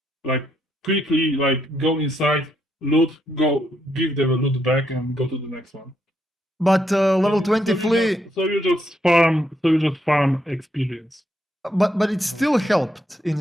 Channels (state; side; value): normal; both; correlation 0.77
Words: Like quickly, like go inside, loot, go give them a loot back, and go to the next one. But level 20 Flea. So you just farm experience. But it still helped